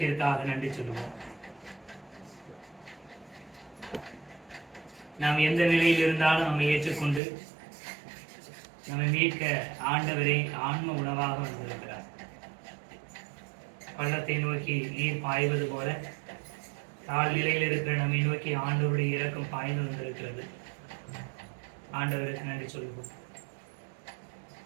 நன்றி சொல்லுவோம். நாம் எந்த நிலையில் இருந்தாலும் நம்மை ஏற்றுக்கொண்டு நம்மை மீட்க ஆண்டவரை ஆன்ம உணவாக வந்திருக்கிறார். பள்ளத்தை நோக்கி நீர் பாய்வது போல தாழ்நிலையில் இருக்கிற நம்மை நோக்கி ஆண்டவருடைய இரக்கம் பாய்ந்து வந்திருக்கிறது. ஆண்டவருக்கு நன்றி சொல்லுவோம்.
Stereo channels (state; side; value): drops out; left; at 7.2 s